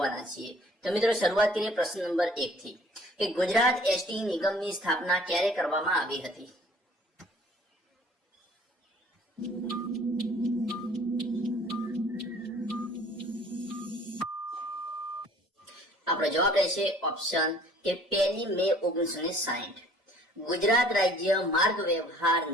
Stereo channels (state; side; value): normal; both; correlation 0.54